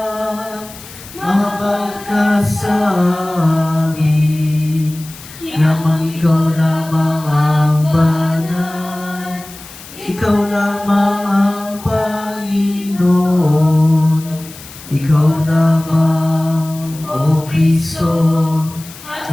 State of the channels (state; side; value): noise; left; hiss, 17 dB below the sound